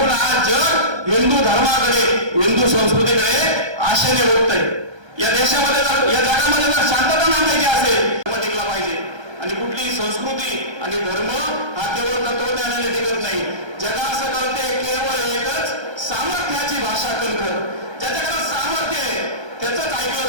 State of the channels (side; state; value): left; late; 1.3 ms